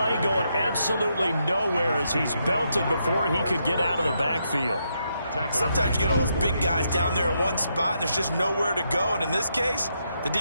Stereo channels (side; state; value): both; inverted; correlation -0.80